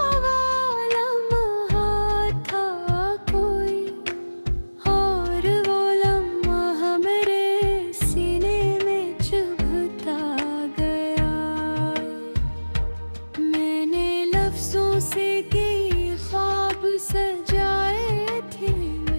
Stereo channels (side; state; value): both; inverted; correlation -1.00